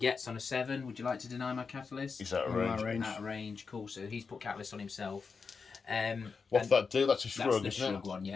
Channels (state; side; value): quieter; right; 5.1 dB